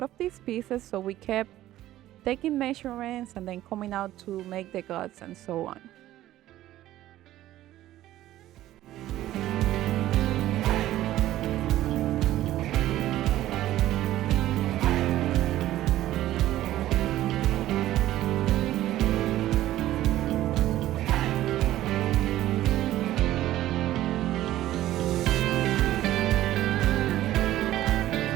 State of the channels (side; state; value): left; quieter; 14.2 dB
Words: of these pieces, so we kept taking measurements and then coming out to make the guts and so on.